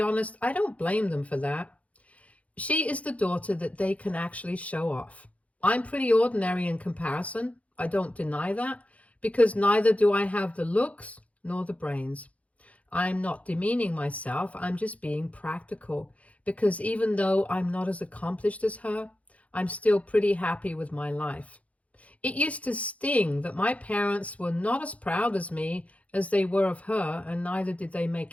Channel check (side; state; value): right; late; 0.066 ms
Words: I don't blame them for that. She is the daughter that they can actually show off. I'm pretty ordinary in comparison. I don't deny that, because neither do I have the looks nor the brains. I'm not demeaning myself, I'm just being practical, because even though I'm not as accomplished as her, I'm still pretty happy with my life. It used to sting that my parents were not as proud as me as they were of her, and neither did they